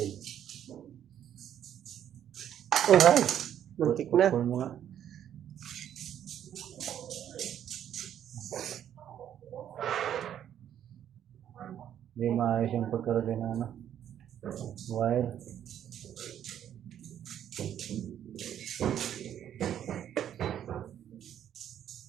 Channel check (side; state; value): left; quieter; 10.2 dB